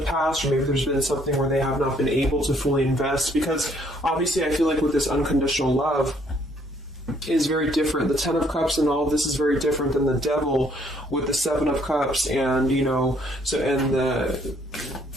past, or maybe there's been something where they have not been able to fully invest, because obviously I feel like with this unconditional love is very different. The Ten of Cups and all of this is very different than the Devil with the Seven of Cups, and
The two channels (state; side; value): normal; both; correlation 0.66